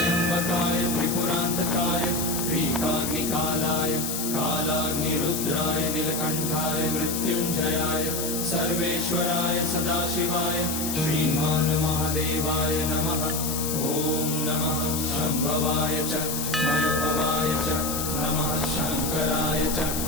त्रिपुरांतकाय त्रिकाग्निकालाय कालाग्निरुद्राय नीलकंठाय मृत्युंजयाय सर्वेश्वराय सदाशिवाय श्रीमान महादेवाय नमः। ओम नमः शंभवाय च मयोभवाय च नमः शंकराय च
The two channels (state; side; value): noise; left; hiss, 3 dB below the sound